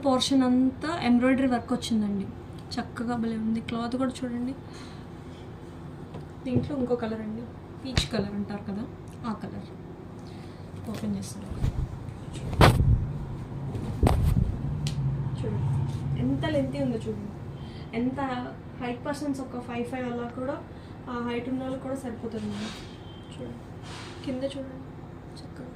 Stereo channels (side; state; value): both; identical; correlation 1.00